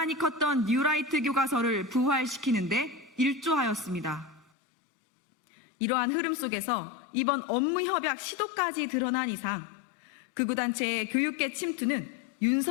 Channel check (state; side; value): drops out; right; at 4.5 s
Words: 컸던 뉴라이트 교과서를 부활시키는데 일조하였습니다. 이러한 흐름 속에서 이번 업무협약 시도까지 드러난 이상 극우단체의 교육계 침투는